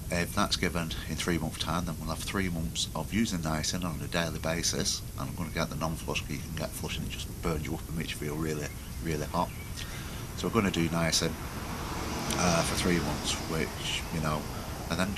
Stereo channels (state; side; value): identical; both; correlation 1.00